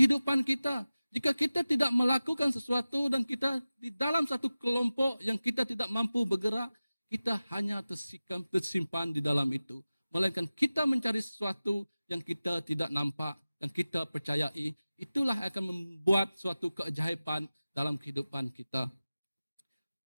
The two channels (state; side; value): inverted; both; correlation -0.96